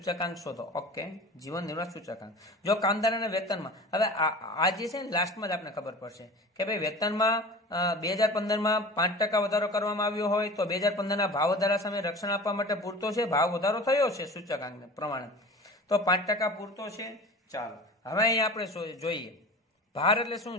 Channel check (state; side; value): normal; both; correlation 0.37